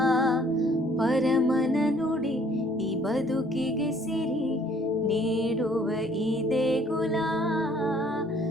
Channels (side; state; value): both; normal; correlation 0.60